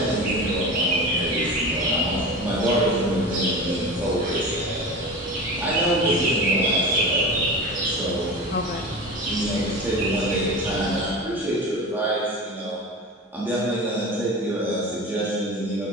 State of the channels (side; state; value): both; normal; correlation 0.30